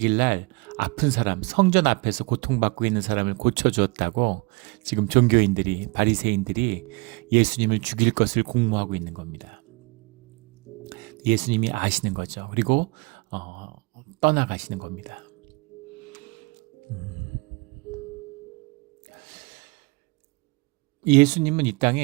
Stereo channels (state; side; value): quieter; left; 27.4 dB